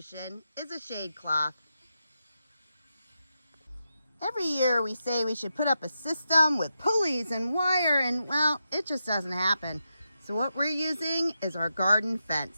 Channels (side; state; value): both; inverted; correlation -0.87